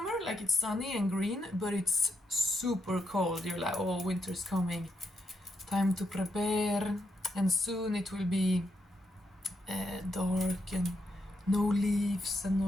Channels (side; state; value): both; normal; correlation 0.81